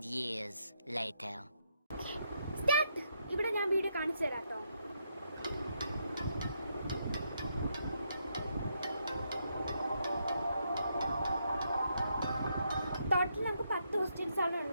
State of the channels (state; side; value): inverted; both; correlation -0.78